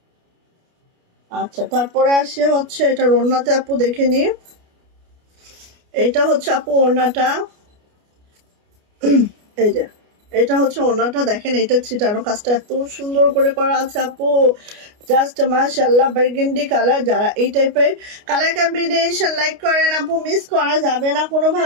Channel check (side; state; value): left; late; 29 ms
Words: আচ্ছা তারপরে আসে হচ্ছে এটা ওড়নাতে আপু দেখে নি। এটা হচ্ছে আপু ওড়নাটা, এই যে এটা হচ্ছে ওড়নাটা, দেখেন এটা ছিটানো কাজটা এত সুন্দর করে করা আছে আপু, জাস্ট মাশাআল্লাহ। বার্গেন্ডি কালার, যারা এই টাইপের কালার কম্বিনেশন লাইক করেন আপু মিস করা যাবে না